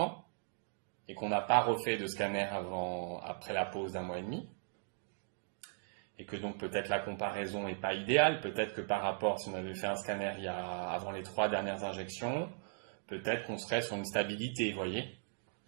et qu'on n'a pas refait de scanner après la pause d'1 mois et demi? Et que donc peut-être la comparaison n'est pas idéale, peut-être que par rapport, si on avait fait un scanner avant les 3 dernières injections, peut-être qu'on serait sur une stabilité, vous voyez.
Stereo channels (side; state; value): left; silent; digital silence